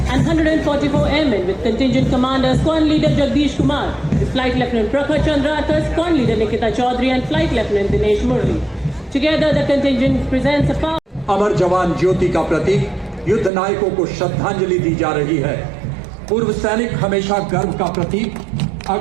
and 144 airmen with contingent commander Squadron Leader Jagdish Kumar, the Flight Lieutenant Prakhar Chandrakar, Squadron Leader Nikita Chaudhary and Flight Lieutenant Dinesh Murli. Together the contingent presents a power. अमर जवान ज्योति का प्रतीक युद्ध नायकों को श्रद्धांजलि दी जा रही है। पूर्व सैनिक हमेशा गर्व का प्रतीक।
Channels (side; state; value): left; drops out; at 13.5 s